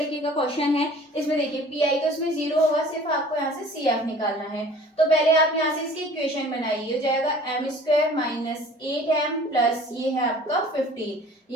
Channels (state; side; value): normal; both; correlation 0.49